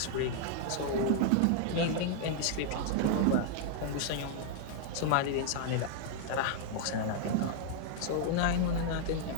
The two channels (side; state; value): both; different; correlation 0.00